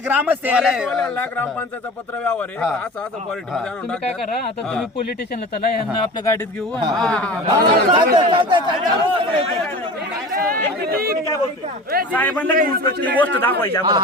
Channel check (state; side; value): normal; both; correlation 0.36